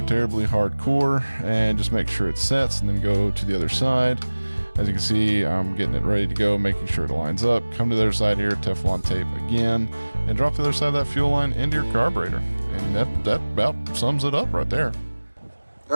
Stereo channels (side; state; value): both; inverted; correlation -1.00